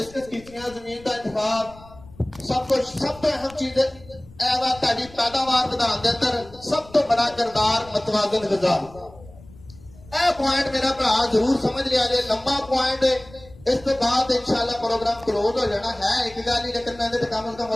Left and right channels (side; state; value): left; noise; rumble, 21 dB below the sound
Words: ਕੀਤੀਆਂ, ਜ਼ਮੀਨ ਦਾ ਇੰਤਖਾਬ, ਸਭ ਤੋਂ ਅਹਿਮ ਚੀਜ਼ ਇਹ ਵਾ ਤੁਹਾਡੀ ਪੈਦਾਵਾਰ ਵਧਾਉਣ ਦੇ ਅੰਦਰ ਸਭ ਤੋਂ ਬੜਾ ਕਿਰਦਾਰ ਮਤਵਾਜ਼ਨ ਗ਼ਜ਼ਾ। ਇਹ ਪੁਆਇੰਟ ਮੇਰਾ ਭਰਾ ਜ਼ਰੂਰ ਸਮਝ ਲਿਆ ਜੇ, ਲੰਬਾ ਪੁਆਇੰਟ। ਇਸ ਤੋਂ ਬਾਅਦ ਇਨਸ਼ਾਅੱਲਾ ਪ੍ਰੋਗਰਾਮ ਕਲੋਜ਼ ਹੋ ਜਾਣਾ ਹੈ, ਇੱਕ ਗੱਲ ਹੀ, ਲੇਕਿਨ ਮੈਂ ਇਹਦੇ ਤੇ ਕਮ ਸੇ ਕਮ